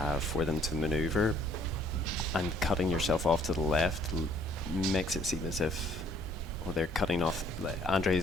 for them to maneuver, and cutting yourself off to the left makes it seem as if, well, they're cutting off.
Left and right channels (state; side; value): normal; both; correlation 0.61